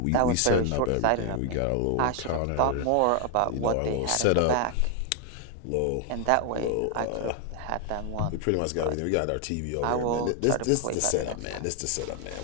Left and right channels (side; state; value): both; different; correlation 0.00